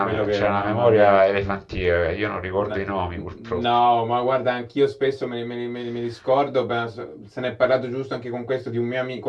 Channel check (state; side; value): identical; both; correlation 1.00